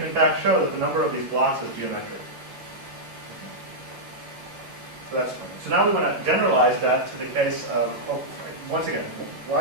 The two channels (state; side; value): late; left; 11 ms